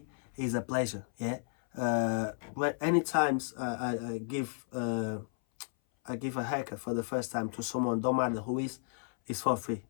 It's a pleasure. Yeah. When any times I give a haircut for the first time to someone, don't matter who is, it's for free.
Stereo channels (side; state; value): right; silent; 56 dB below the other